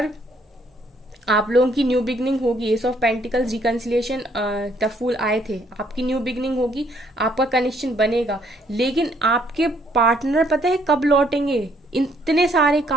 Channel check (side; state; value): both; normal; correlation 0.67